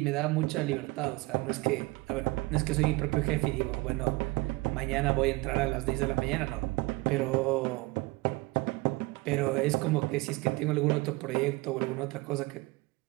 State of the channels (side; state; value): left; quieter; 22.9 dB